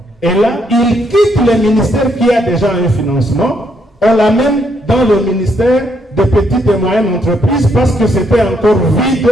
Et là, il quitte le ministère qui a déjà un financement, on l'amène dans le ministère des petites et moyennes entreprises parce que c'était encore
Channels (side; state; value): both; normal; correlation 0.74